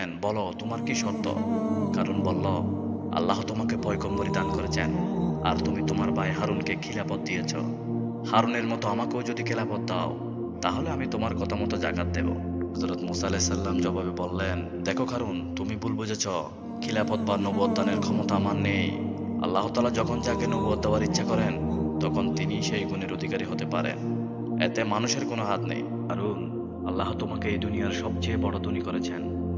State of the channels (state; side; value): identical; both; correlation 1.00